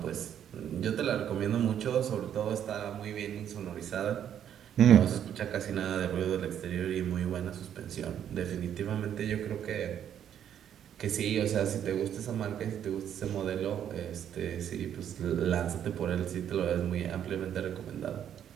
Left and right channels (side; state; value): left; quieter; 9.6 dB